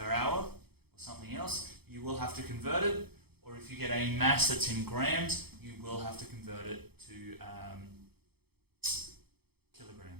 hour or something else, you will have to convert it. Or if you get a mass that's in grams, you will have to convert it to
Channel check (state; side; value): late; left; 0.97 ms